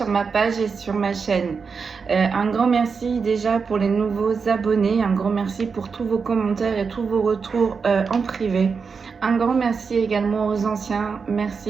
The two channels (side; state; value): left; quieter; 5.4 dB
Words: ma page et sur ma chaîne. Un grand merci déjà pour les nouveaux abonnés, un grand merci pour tous vos commentaires et tous vos retours en privé. Un grand merci également aux anciens,